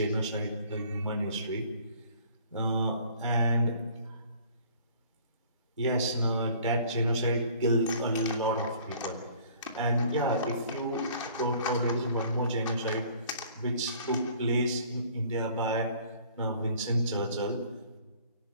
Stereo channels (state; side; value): inverted; both; correlation -0.54